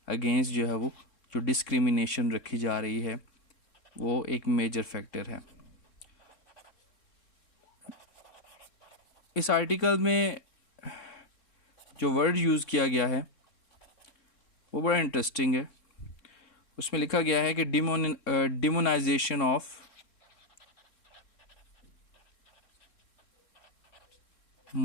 अगेंस्ट जो है वो जो डिस्क्रिमिनेशन रखी जा रही है वो एक मेजर फैक्टर है। इस आर्टिकल में जो वर्ड यूज़ किया गया है वो बड़ा इंटरेस्टिंग है। उसमें लिखा गया है कि डिमोनाइजेशन ऑफ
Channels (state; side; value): late; right; 3.6 ms